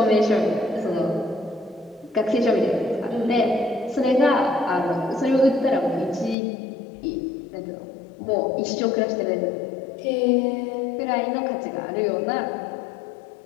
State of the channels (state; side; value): drops out; right; at 6.4 s